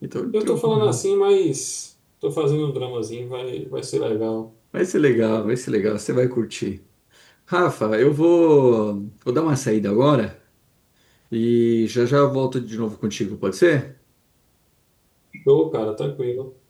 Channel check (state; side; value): identical; both; correlation 1.00